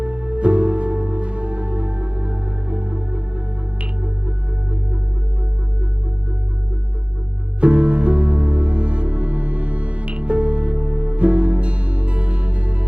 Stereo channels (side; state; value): left; late; 0.060 ms